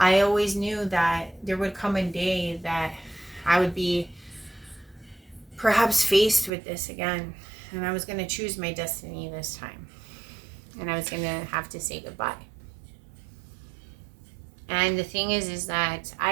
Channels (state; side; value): drops out; left; at 6.5 s